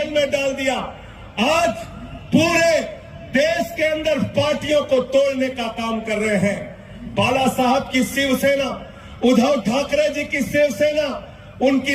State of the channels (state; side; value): identical; both; correlation 1.00